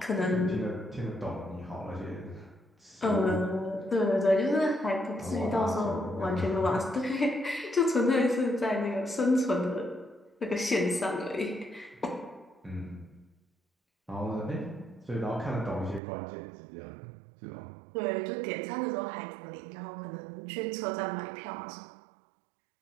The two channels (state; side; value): drops out; left; at 16.0 s